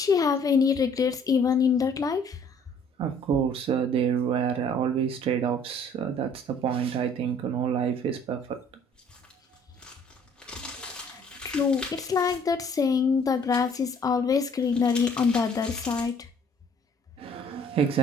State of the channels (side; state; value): both; normal; correlation 0.58